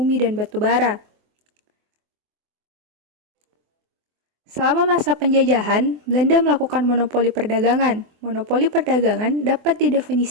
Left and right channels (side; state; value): left; late; 24 ms